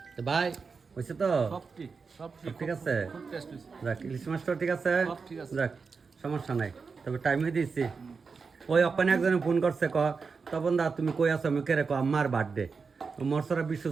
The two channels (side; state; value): left; quieter; 5.0 dB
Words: তো ভাই হয়েছে তো সব সব ঠিক আছে খুব টেস্ট হয়েছে যাক ইলিশ মাছটা ঠিক আছে সব ঠিক আছে। যাক সমস্যা নাই তবে টাইমে দিয়েছি ওই অপানে একজনে ফোন করছে তপন দা তুমি কই আছো আমি কেরে আম্মার বার্থডে মরসরা